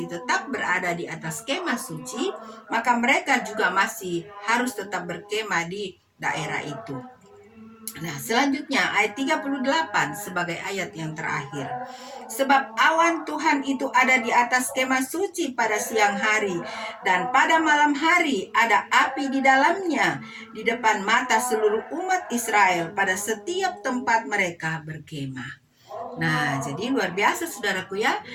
tetap berada di atas kemah suci, maka mereka juga masih harus tetap berkemah di daerah itu. Nah, selanjutnya ayat 38 sebagai ayat yang terakhir. Sebab awan Tuhan itu ada di atas kemah suci pada siang hari, dan pada malam hari ada api di dalamnya, di depan mata seluruh umat Israel pada setiap tempat mereka berkemah. Nah, jadi luar biasa saudaraku ya.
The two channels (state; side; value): identical; both; correlation 1.00